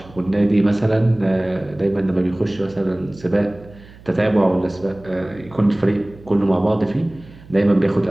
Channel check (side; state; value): right; noise; hum, 22 dB below the sound